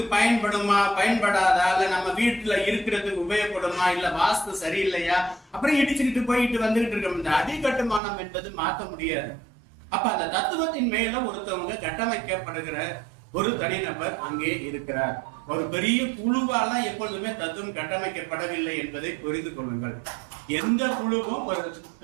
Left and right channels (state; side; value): drops out; left; at 8.0 s